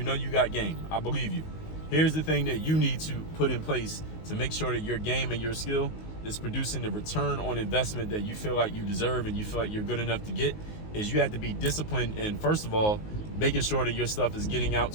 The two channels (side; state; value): right; late; 19 ms